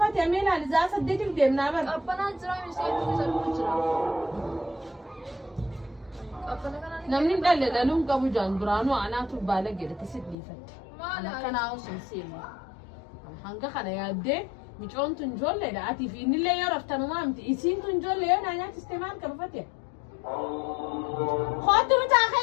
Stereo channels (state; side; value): drops out; right; at 10.4 s